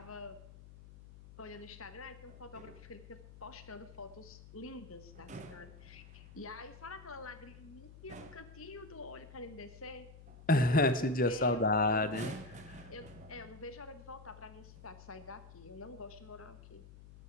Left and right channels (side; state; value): left; noise; hum, 17 dB below the sound